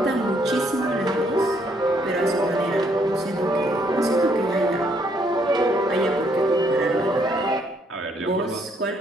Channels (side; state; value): both; normal; correlation 0.70